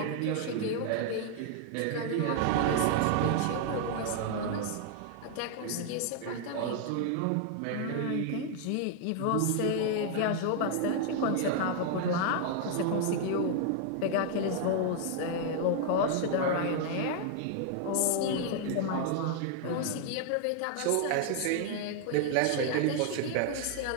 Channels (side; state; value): both; different; correlation 0.00